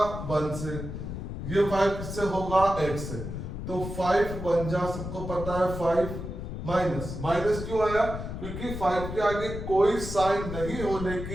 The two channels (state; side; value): noise; left; rumble, 7 dB below the sound